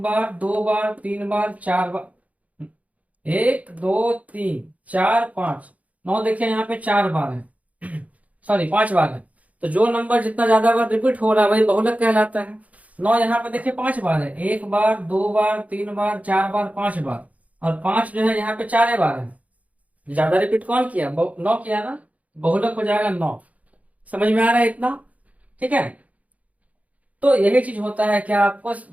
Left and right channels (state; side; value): late; left; 0.070 ms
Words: 2 बार, 3 बार, 4 बार। 1 2 3 4 5, 9 देखिए यहाँ पे 4 बार है, सॉरी 5 बार है। तो जो नंबर जितना ज्यादा बार रिपीट हो रहा है वही बहुलक कहलाता है। 9 यहाँ पे देखिए 5 बार है, एक बार, 2 बार, 3 बार, 4 बार, 5 बार। और 5 जो है यहाँ पे 4 बार है। ज्यादा रिपीट कौन किया, 9 किया ना, बहुलक हो जाएगा 9। समझ में आ रहा है इतना, ठीक है। तो यही चीज होता है, क्या आपको